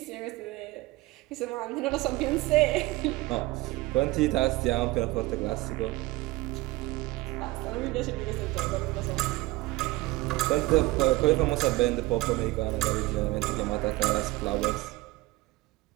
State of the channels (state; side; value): quieter; left; 20.1 dB